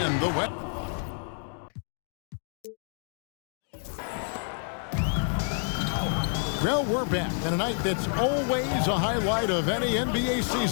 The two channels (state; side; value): silent; right; 58 dB below the other